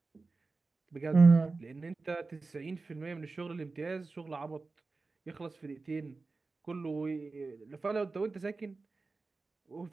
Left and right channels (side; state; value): left; quieter; 3.8 dB